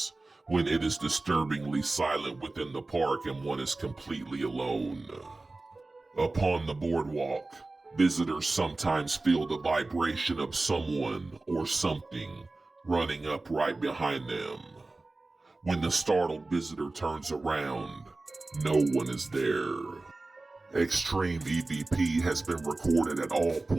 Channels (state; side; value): quieter; left; 3.2 dB